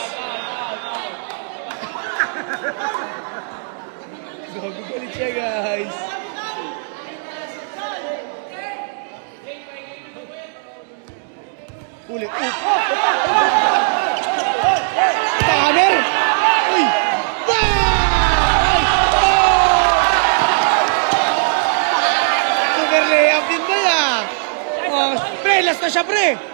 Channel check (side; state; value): left; silent; digital silence